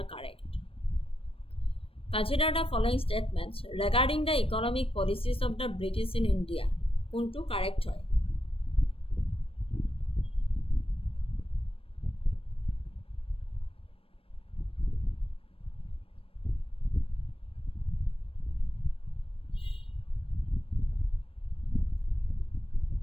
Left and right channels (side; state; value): right; late; 0.27 ms